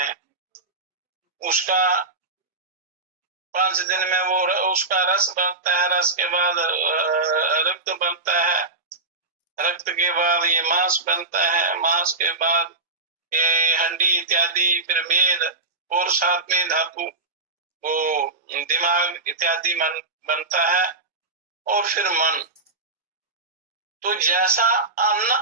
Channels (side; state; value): left; quieter; 3.4 dB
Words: उसका 5 दिन में वो उसका रस बनता है, रस के बाद रक्त बनता है, रक्त के बाद ये मांस बनता है, मांस के बाद ये हड्डी इत्यादि, फिर मेद, और साथ में धातु वो दिमाग इत्यादि बनता है, और फिर मन। तो जैसा अन्न